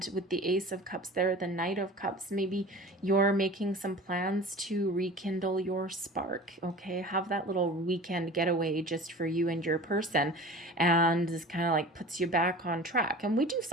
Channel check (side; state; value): both; normal; correlation 0.39